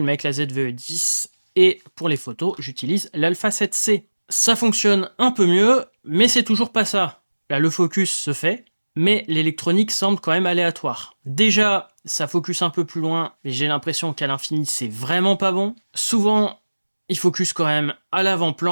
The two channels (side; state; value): both; inverted; correlation -1.00